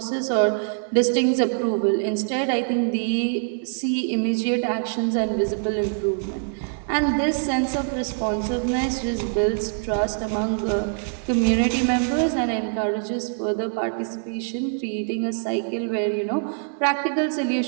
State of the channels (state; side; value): silent; left; digital silence